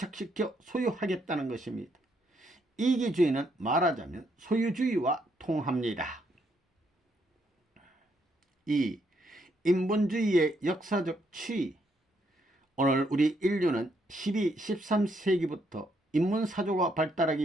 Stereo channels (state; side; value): normal; both; correlation 0.74